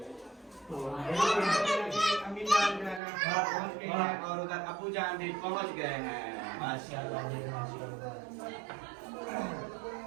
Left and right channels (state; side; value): drops out; left; at 3.0 s